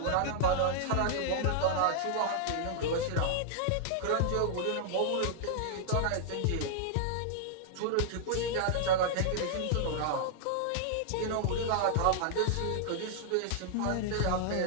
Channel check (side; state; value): both; different; correlation -0.01